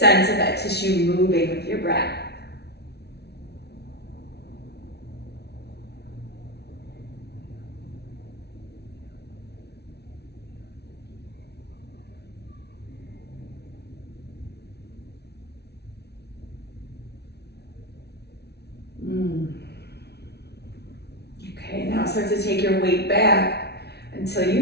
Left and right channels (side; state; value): right; late; 0.49 ms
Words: of that tissue moving with your breath. Okay, now start to take your weight back until you